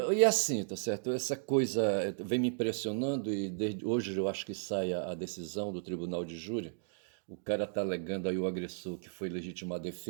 assim, tá certo? Essa coisa vem me impressionando e desde hoje eu acho que sai a decisão do tribunal de júri. O cara tá alegando aí o agressor que foi legítima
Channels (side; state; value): left; silent; digital silence